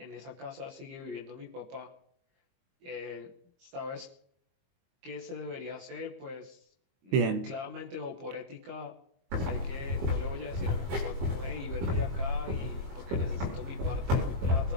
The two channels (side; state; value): left; late; 22 ms